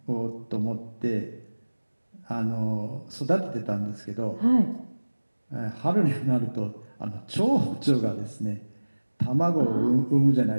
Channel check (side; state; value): both; inverted; correlation -1.00